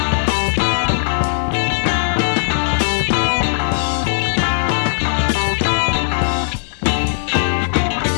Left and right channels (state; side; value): silent; right; digital silence